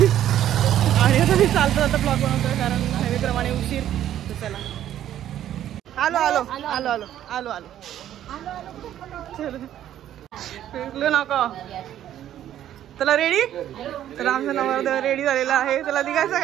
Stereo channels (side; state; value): left; quieter; 11.5 dB